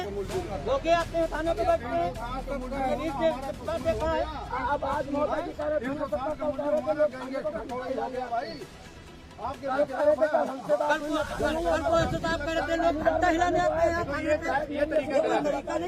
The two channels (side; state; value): both; identical; correlation 1.00